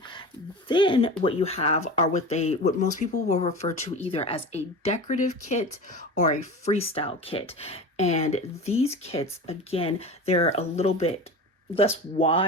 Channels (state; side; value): normal; both; correlation 0.32